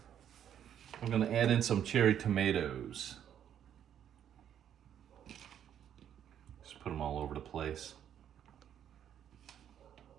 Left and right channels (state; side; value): quieter; left; 9.7 dB